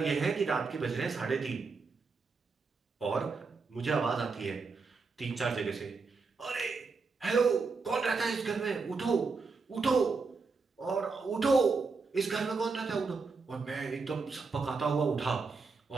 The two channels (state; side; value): quieter; left; 4.5 dB